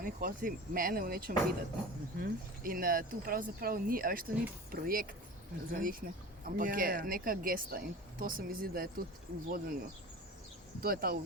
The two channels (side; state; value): both; normal; correlation 0.35